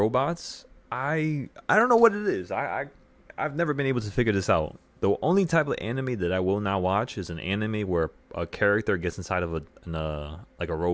I don't know what it is. I've never been able to figure this out. The only type of anime that I will not watch is an anime where a character gets inside of like a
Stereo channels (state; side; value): identical; both; correlation 1.00